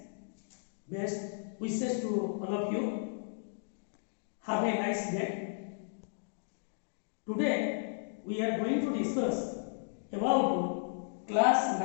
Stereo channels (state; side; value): silent; right; digital silence